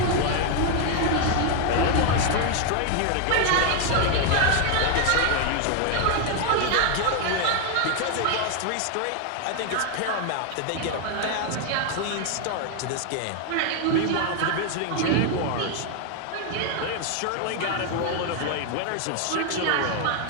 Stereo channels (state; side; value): different; both; correlation 0.01